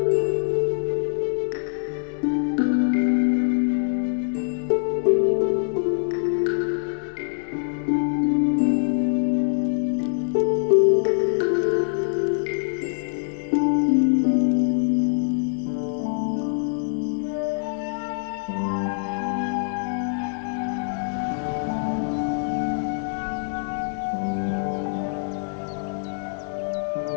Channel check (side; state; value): right; silent; digital silence